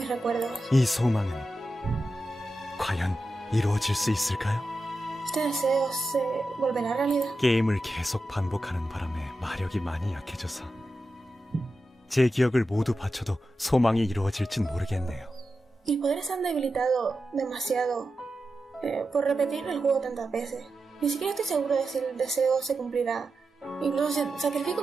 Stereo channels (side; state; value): both; normal; correlation 0.91